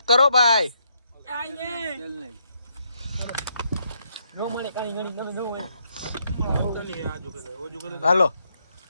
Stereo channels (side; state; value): both; inverted; correlation -0.76